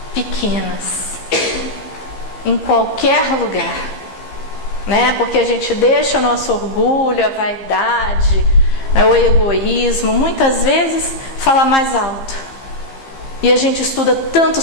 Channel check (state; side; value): late; right; 15 ms